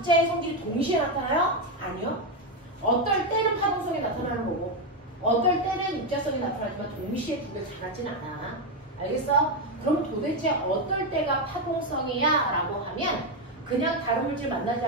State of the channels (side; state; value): both; normal; correlation 0.07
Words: 성질이 동시에 나타나요? 아니요. 어떨 때는 파동성이 나타나는 거고 어떨 때는 입자성이 나타나지만 동시에 두 개 다 같지는 않아. 알겠어? 그럼 도대체 어떨 때가 파동성이야? 라고 하면 그냥 다른 물질 만나지